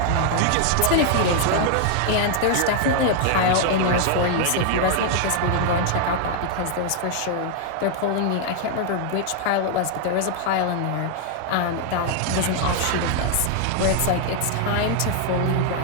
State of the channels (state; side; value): different; both; correlation 0.00